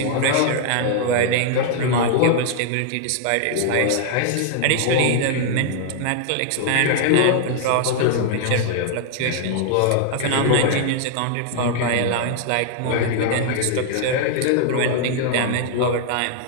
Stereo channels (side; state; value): both; different; correlation -0.01